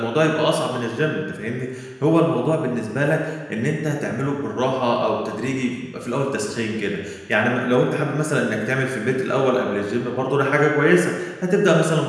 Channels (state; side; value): identical; both; correlation 1.00